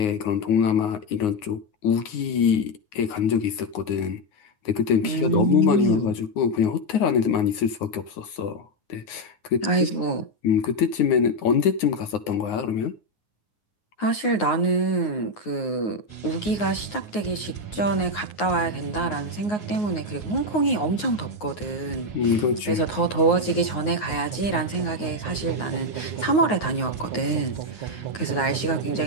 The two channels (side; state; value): right; late; 9.5 ms